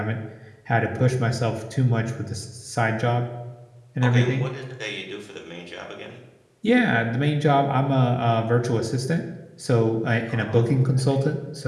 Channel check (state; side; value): identical; both; correlation 1.00